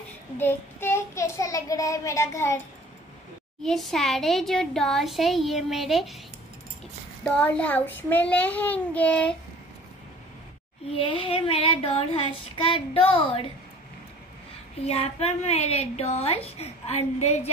देखते हैं कैसा लग रहा है मेरा घर। ये सारे जो डॉल्स है ये मेरे डॉल हाउस में रहेंगे। ये है मेरा डॉल हाउस का डोर। यहाँ पर मेरे डॉल्स अंदर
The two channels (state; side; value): normal; both; correlation 0.48